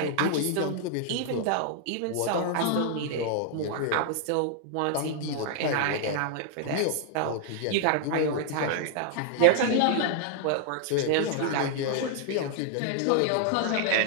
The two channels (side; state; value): both; different; correlation 0.00